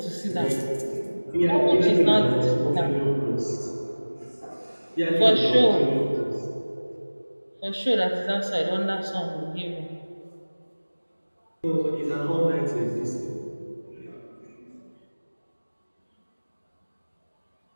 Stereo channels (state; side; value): inverted; both; correlation -1.00